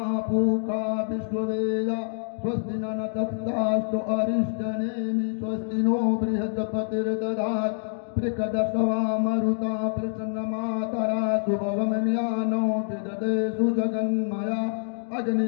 पूषा विश्ववेदा स्वस्ति न नक्षत्रास्तु अरिष्टनेमि स्वस्ति नो बृहस्पतिर्दधात् प्रकदशवा मरुता प्रसन्नमातरा शुभवमन्यानो विदधे सुजगन्मया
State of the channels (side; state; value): right; silent; digital silence